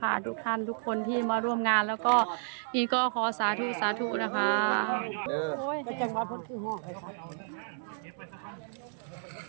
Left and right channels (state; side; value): silent; left; digital silence